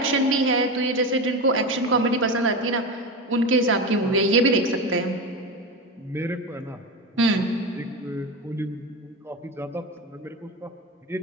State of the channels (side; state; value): both; normal; correlation 0.21